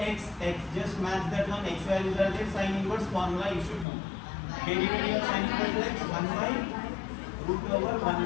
just match that one, x values are there, sin inverse formula you should know. Derivative of sin inverse x, 1 by root over 1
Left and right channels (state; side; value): drops out; right; at 3.9 s